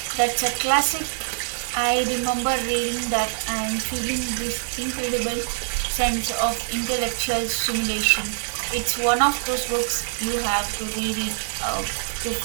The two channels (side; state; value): left; silent; digital silence